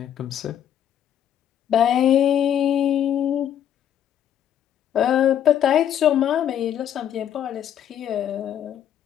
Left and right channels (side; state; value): right; quieter; 10.0 dB